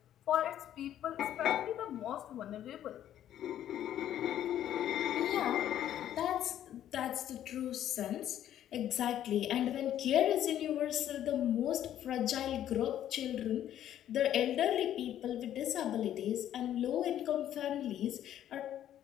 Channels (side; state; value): right; quieter; 11.3 dB